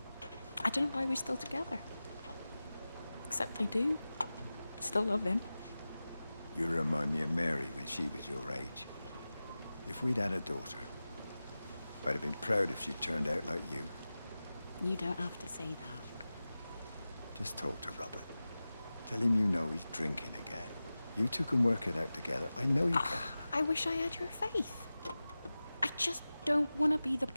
I don't know why we're still together. Except I do. Still love him. You remind me of Mary when she was your age. If we'd had a daughter, I'd have been proud if she turned out like you. You don't have to say that. Just talk to Robert. Tell him you know he's drinking again. You two can work it out together. I know you can. I wish I had your faith. I just don't want to be the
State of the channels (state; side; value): inverted; both; correlation -0.96